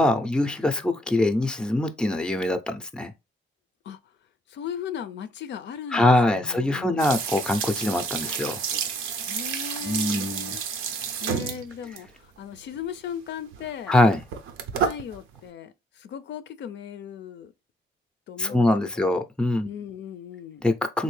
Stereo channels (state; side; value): normal; both; correlation 0.69